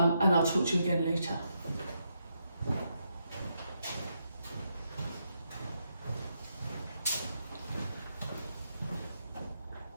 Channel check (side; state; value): both; inverted; correlation -0.81